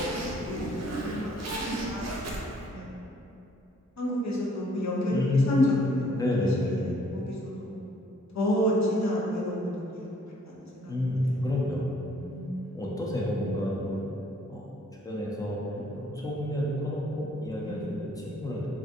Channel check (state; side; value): normal; both; correlation 0.62